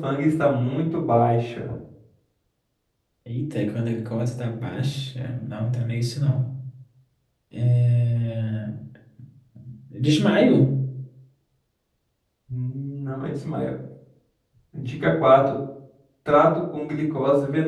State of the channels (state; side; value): identical; both; correlation 1.00